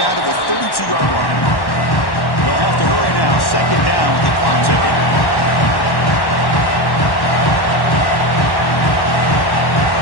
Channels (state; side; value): late; right; 1.1 ms